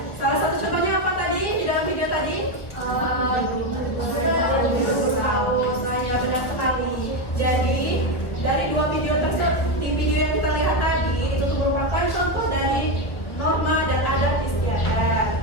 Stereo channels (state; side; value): late; right; 1.1 ms